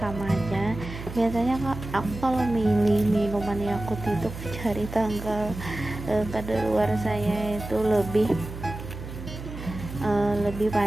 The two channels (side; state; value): right; noise; hum, 10 dB below the sound